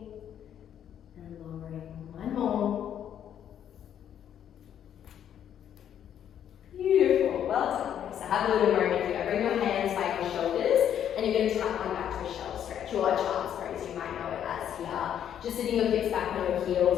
and lowering. 1 more. Beautiful. Well done. So have a little moment here. Bring your hands by your shoulders, and you're going to tap on back to a shell stretch, or a child's pose, you might know it as here. Just sitting your hips back on your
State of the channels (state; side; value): quieter; right; 9.7 dB